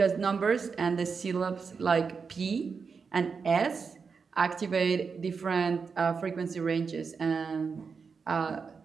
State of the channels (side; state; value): left; quieter; 5.4 dB